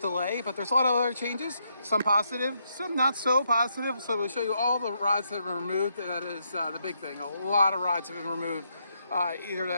but there's a lot of other changes. Some positive, some not so positive. So we'll show you all the rides that have been removed. That is the big thing. A lot of rides have been removed. Either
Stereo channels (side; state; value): both; inverted; correlation -0.78